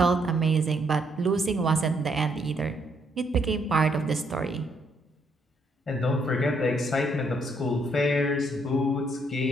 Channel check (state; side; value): normal; both; correlation 0.72